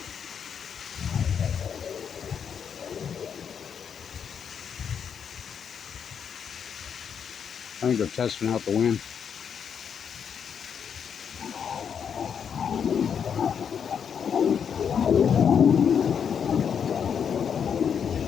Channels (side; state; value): right; quieter; 7.4 dB